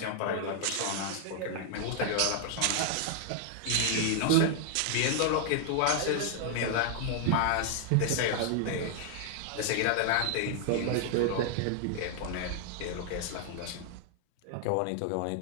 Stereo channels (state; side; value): different; both; correlation 0.00